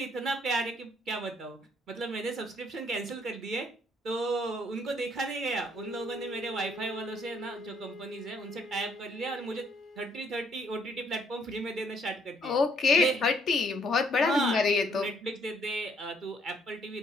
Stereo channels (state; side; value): normal; both; correlation 0.67